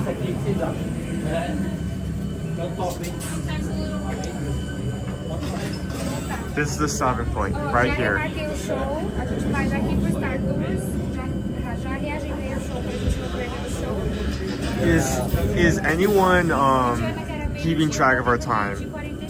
This is the stopping point, right here. Is anyone keeping track of our time?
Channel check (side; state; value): both; identical; correlation 1.00